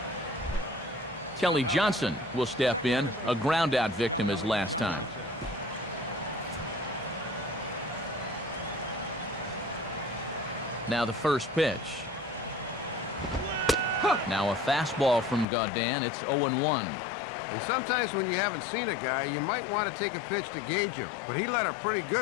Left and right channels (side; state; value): right; drops out; at 15.5 s